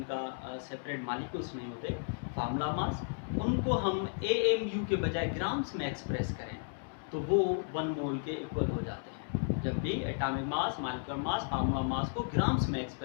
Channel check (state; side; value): silent; right; digital silence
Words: सेपरेट मॉलिक्यूल्स नहीं होते, फार्मूला मास, उनको हम AMU के बजाय ग्राम्स में एक्सप्रेस करें तो वो 1 मोल के इक्वल हो जाते हैं। जब भी atomic mass, molecular mass, formula mass को ग्राम्स में